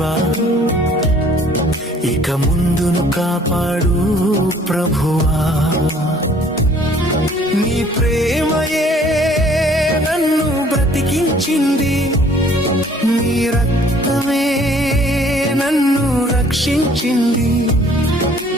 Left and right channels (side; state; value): both; normal; correlation 0.57